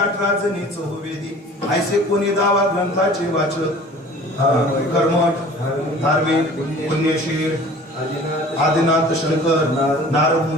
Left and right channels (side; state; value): both; normal; correlation 0.46